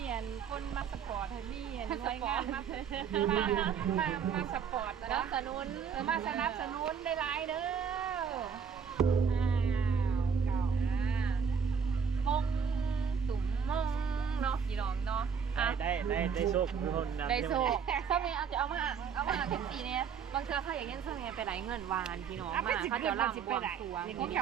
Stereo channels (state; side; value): quieter; left; 6.6 dB